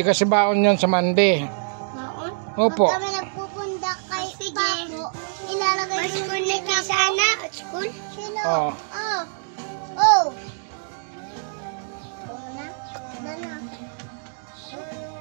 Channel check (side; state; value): left; silent; digital silence